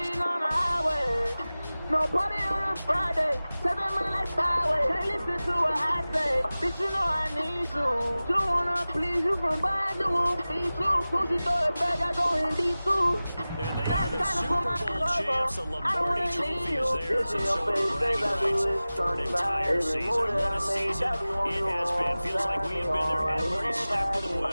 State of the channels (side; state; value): both; inverted; correlation -0.97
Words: on the highway. No party on a Friday, 7 money like highway. Can't listen to what I say, bitch, you know I need you. You wanna please you from behind, you won't feed you. Soon as you throw it back, I go in D2. And they are the Super Bowl champs. The Lombardi Trophy is theirs, and so are bragging rights for an entire season. What a season it has been. Feels like we have been there every step of the